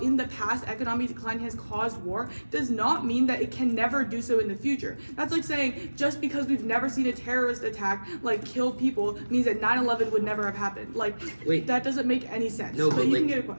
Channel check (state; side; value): inverted; both; correlation -1.00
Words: in the past economic decline has caused war does not mean that it can never do so in the future. That's like saying just because we've never seen a terrorist attack like kill people means that 9/11 would never have happened. Like, wait, that doesn't make any sense. No, but you like, can get